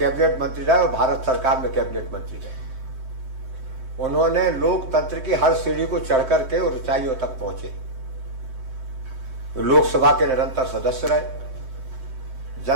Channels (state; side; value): late; left; 7.7 ms